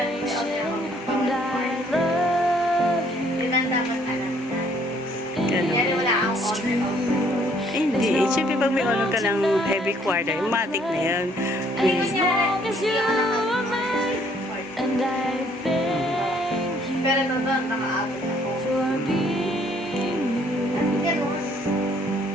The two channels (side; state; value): both; normal; correlation 0.63